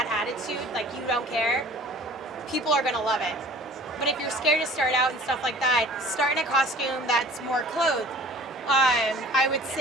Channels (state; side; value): normal; both; correlation 0.47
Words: attitude, like you don't care, people are going to love it. But if you're scared to start out and stuff like that, start in a costume that's more clothed. I would